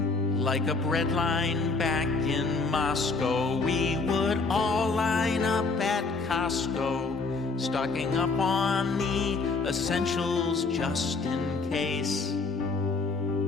Like a breadline back in Moscow, we would all line up at Costco, stocking up on the essentials just in case.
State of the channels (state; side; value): quieter; right; 4.0 dB